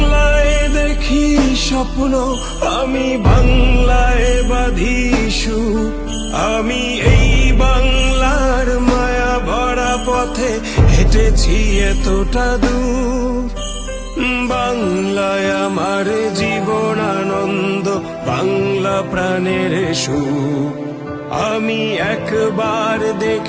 দেখি স্বপ্ন, আমি বাংলায় বাঁধি সুর। আমি এই বাংলার মায়া ভরা পথে হেঁটেছি এতটা দূর। বাংলায় আমার জীবন আনন্দ, বাংলা প্রাণের সুর। আমি একবার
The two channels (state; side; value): identical; both; correlation 1.00